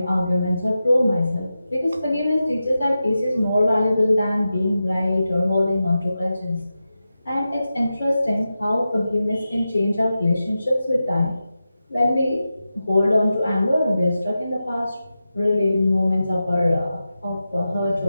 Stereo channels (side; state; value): both; inverted; correlation -0.92